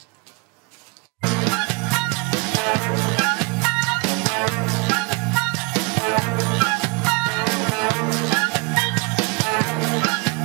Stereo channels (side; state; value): left; quieter; 29.4 dB